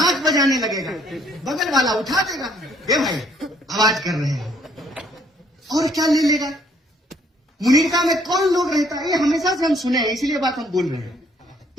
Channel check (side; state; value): both; normal; correlation 0.64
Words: बजाने लगेगा, बगल वाला उठा देगा, ए भाई आवाज कर रहे हैं, और क्या ले लेगा? मुनीरका में कौन लोग रहता है? ये हमेशा से हम सुने हैं, इसीलिए बात हम बोल रहे हैं।